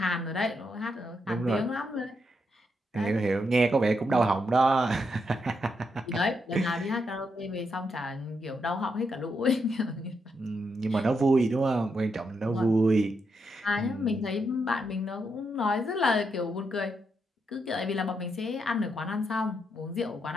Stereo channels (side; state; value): both; normal; correlation 0.81